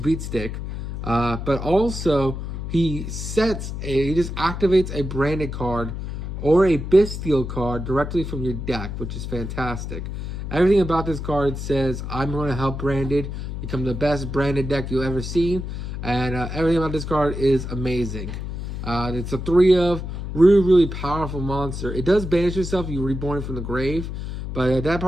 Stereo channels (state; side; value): noise; left; hum, 6 dB below the sound